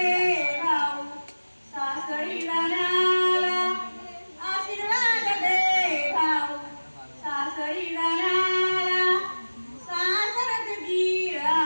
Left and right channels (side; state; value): both; inverted; correlation -1.00